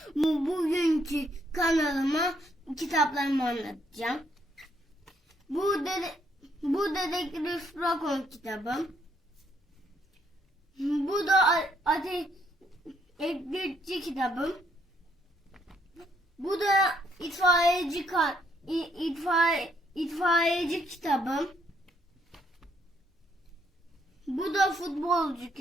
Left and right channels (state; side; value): normal; both; correlation 0.70